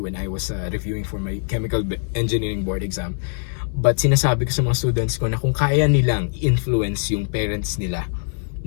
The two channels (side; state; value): right; silent; digital silence